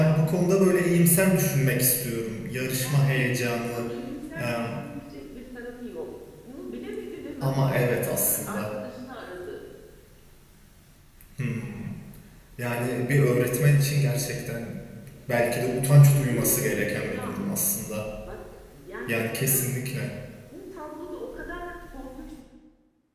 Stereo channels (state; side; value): identical; both; correlation 1.00